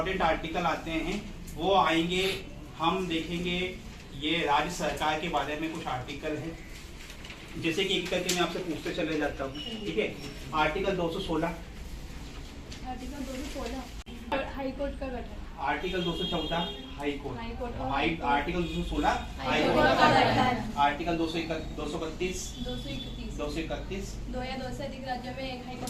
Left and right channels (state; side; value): identical; both; correlation 1.00